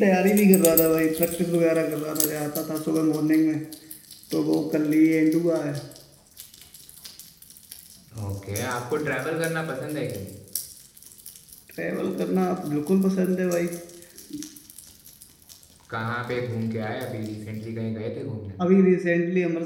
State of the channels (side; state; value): both; identical; correlation 1.00